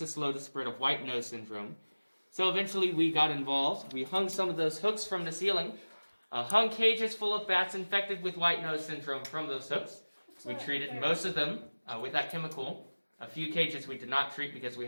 slow the spread of white nose syndrome. So eventually we got involved. We hung some of those hooks from the ceiling, hung cages full of bats infected with white nose syndrome from those hooks. We treated most of them with that chemical. A few cages we did not treat because we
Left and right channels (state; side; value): inverted; both; correlation -1.00